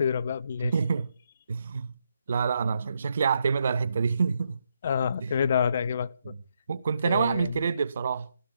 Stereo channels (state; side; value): inverted; both; correlation -0.78